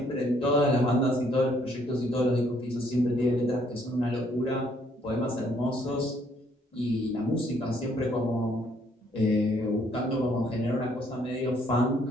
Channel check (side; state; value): both; normal; correlation 0.67